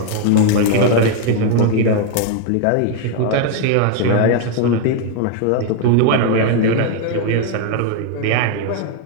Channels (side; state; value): both; different; correlation 0.00